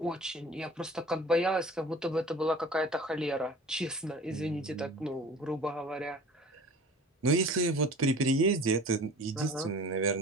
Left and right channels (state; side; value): normal; both; correlation 0.43